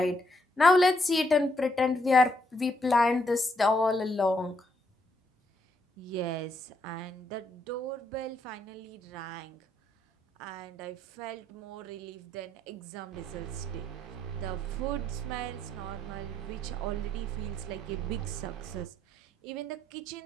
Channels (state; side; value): normal; both; correlation 0.75